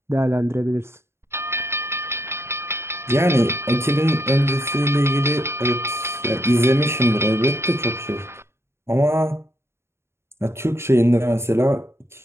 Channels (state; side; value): late; left; 0.12 ms